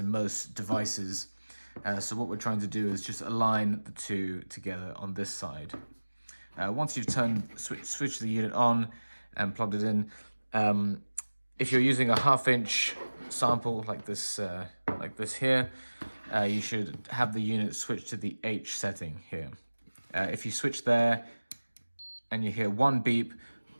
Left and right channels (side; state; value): both; inverted; correlation -1.00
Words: most devices. So what we're trying to do is just align the two together on this side. Once you've switched the unit on and plugged it in, if you're using a 1/2 inch sample like this here, you should have the unit switch to the H setting here. If you switch there and you hear one beep,